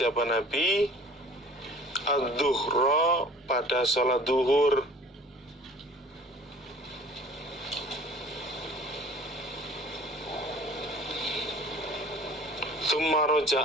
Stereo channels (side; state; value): both; normal; correlation 0.47